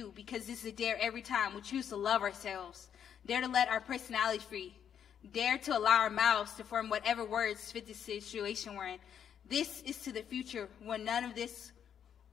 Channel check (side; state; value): right; quieter; 8.6 dB